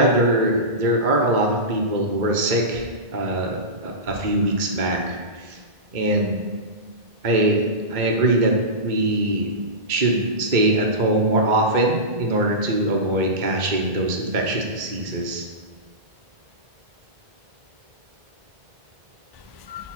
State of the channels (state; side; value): late; left; 2.2 ms